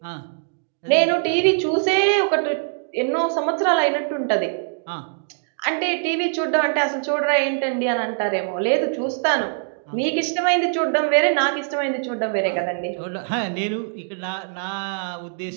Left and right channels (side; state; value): left; silent; digital silence